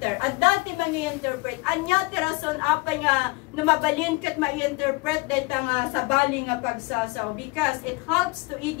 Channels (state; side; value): quieter; right; 25.4 dB